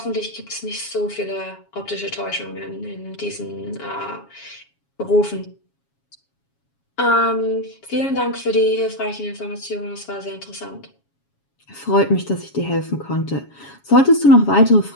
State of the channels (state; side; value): late; right; 7.2 ms